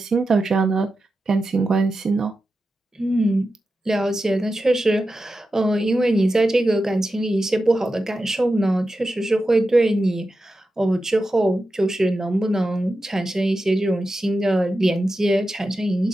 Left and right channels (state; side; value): normal; both; correlation 0.91